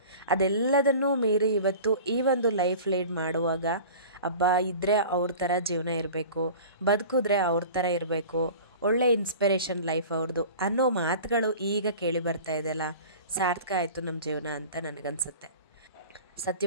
ಅದೆಲ್ಲದನ್ನೂ ಮೀರಿ ಇವತ್ತು ಈ ಒಂದು ಲೈಫ್ ಲೀಡ್ ಮಾಡುವಾಗ ಇದ್ದರೆ ಅವ್ರ ಥರ ಜೀವನ ಇರಬೇಕು, ಬದುಕಿದ್ರೆ ಅವ್ರ ಥರ ಇರಬೇಕು, ಒಳ್ಳೆ ಇನ್ಸ್ಪಿರೇಷನ್ ಲೈಫ್ ಅವ್ರದ್ದು ಅನ್ನೋ ಮಾತುಗಳು ಈಗ ಕೇಳಿ ಬರ್ತಾ ಇದೆಯಲ್ಲ, ಸಾರ್ಥಕ ಆಯಿತು ನಮ್ಮ ಜೀವನ ಅಂತ ನನಗನ್ಸುತ್ತೆ.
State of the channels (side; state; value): both; inverted; correlation -0.39